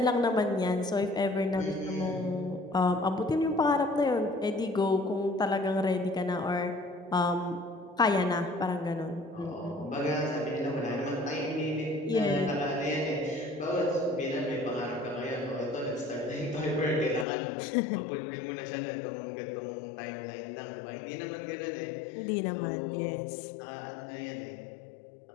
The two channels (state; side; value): drops out; right; at 17.2 s